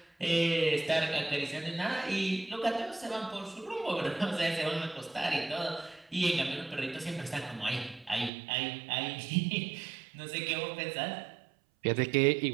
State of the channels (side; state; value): left; drops out; at 8.3 s